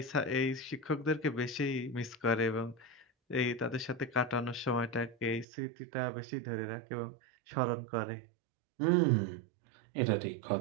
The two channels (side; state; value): left; drops out; at 5.5 s